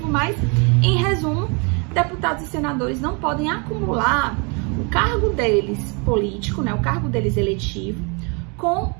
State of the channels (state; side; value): quieter; left; 33.1 dB